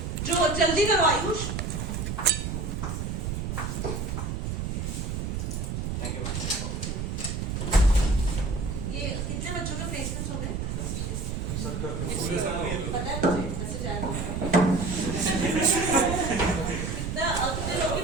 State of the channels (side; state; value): right; noise; rumble, 3 dB below the sound